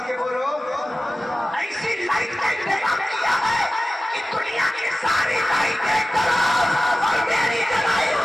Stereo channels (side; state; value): both; normal; correlation 0.96